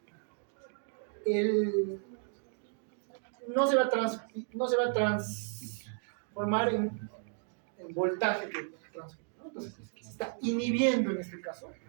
no se va a transformar en voltaje, ¿no? Entonces se está inhibiendo en este caso.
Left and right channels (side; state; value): left; silent; 55 dB below the other